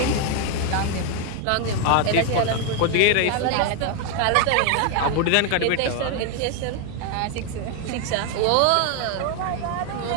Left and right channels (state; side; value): different; both; correlation 0.01